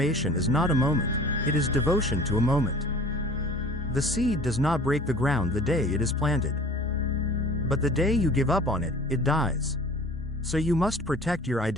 is not a moment, it is devotion to a moment. The seed does not break the ground the day it is planted. But the day you give up on it, it dies. So you must protect your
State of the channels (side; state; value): both; normal; correlation 0.45